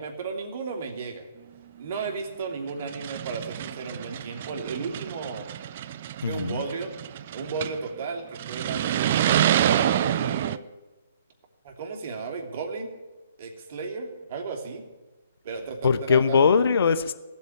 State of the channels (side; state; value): both; inverted; correlation -0.58